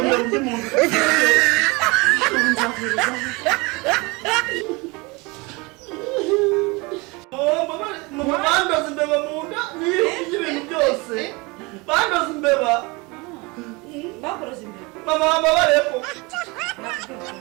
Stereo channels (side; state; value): left; quieter; 26.1 dB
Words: mbere undi muntu nzavuriza bandoze imbeba mu nda n'ibintu byose bandoze imbeba bakuroze imbere mama babareko